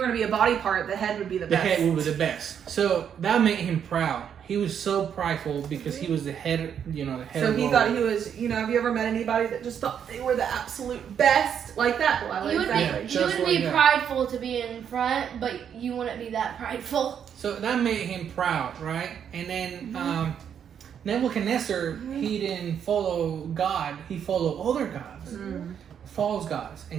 going to be a body part, the head would be the best. The head would be the best. So that made him proud. he was so prideful because he was the head, the head. So of he all. thought he was, have you ever met anybody that just thought they were the absolute best like that? Well, You would exactly. Yeah. you would Just be like that. prideful to be in front, but you wouldn't be that prideful. So that made him proud, right? And then Nebuchadnezzar, he didn't follow God; he followed other gods, false gods,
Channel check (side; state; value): left; quieter; 8.3 dB